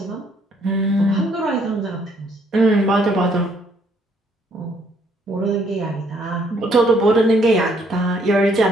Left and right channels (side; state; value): both; normal; correlation 0.67